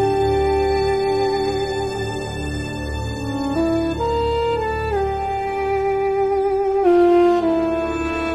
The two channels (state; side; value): identical; both; correlation 1.00